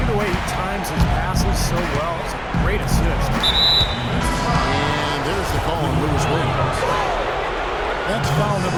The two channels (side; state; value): both; identical; correlation 1.00